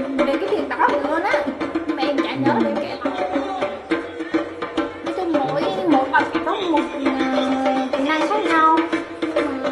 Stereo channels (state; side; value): identical; both; correlation 1.00